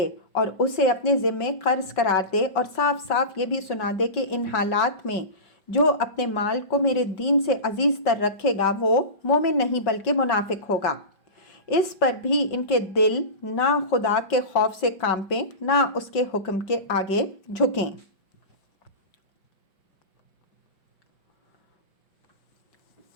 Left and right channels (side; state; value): right; late; 5.4 ms